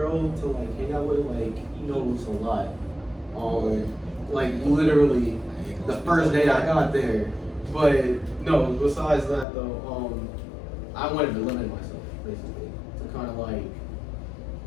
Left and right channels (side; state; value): right; drops out; at 9.5 s